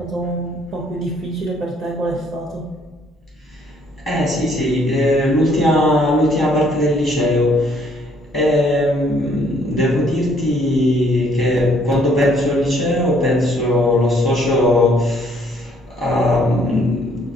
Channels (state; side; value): normal; both; correlation 0.64